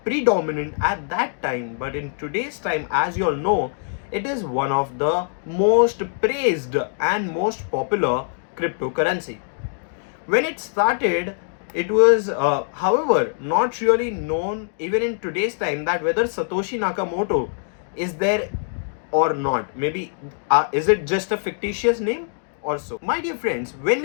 predominant at that time, but in today's time, as you all know, it is one of the most praised and most popular cryptocurrency. When it started, it was, however, not really known even in today's time that whether Satoshi Nakamoto is there or not. Maybe is it just a fictitious name or so? My dear friends, when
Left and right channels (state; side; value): silent; right; 63 dB below the other